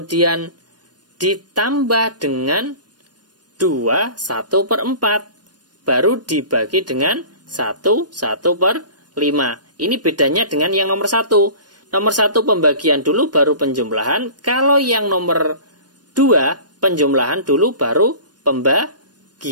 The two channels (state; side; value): late; left; 0.69 ms